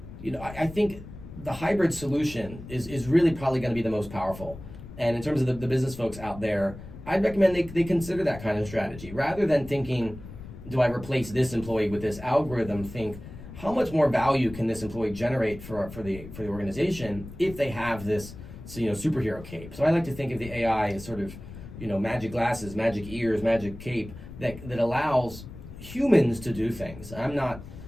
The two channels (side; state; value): left; noise; rumble, 14 dB below the sound